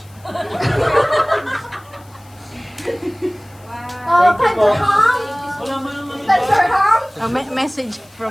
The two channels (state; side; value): noise; left; hiss, 28 dB below the sound